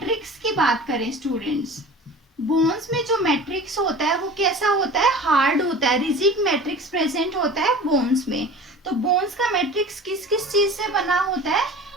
की बात करें स्टूडेंट्स, बोन्स में जो मैट्रिक्स होता है वो कैसा होता है? हार्ड होता है। रिजिड मैट्रिक्स प्रेजेंट होता है बोन्स में। तो बोन्स का मैट्रिक्स किस किस चीज से बना होता है?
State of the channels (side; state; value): both; normal; correlation 0.39